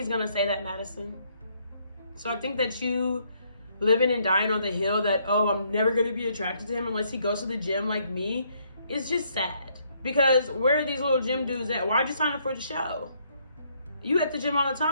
going to say that, Madison. So I think that you living and dying on the hill that, oh, I'm never going to be attracted to him unless he goes to the gym like me, is just sad. Because where are these little gym dudes at? Why'd you sign up for the show? You at the gym all the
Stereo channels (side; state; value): both; inverted; correlation -0.70